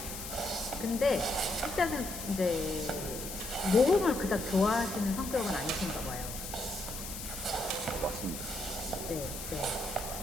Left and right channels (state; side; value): noise; left; hiss, 8 dB below the sound